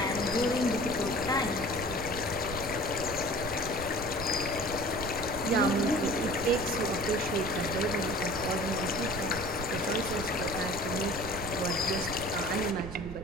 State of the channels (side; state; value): right; noise; rumble, 10 dB below the sound